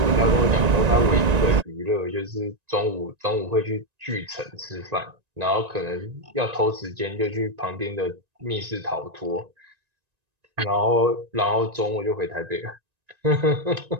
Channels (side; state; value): left; late; 1.9 ms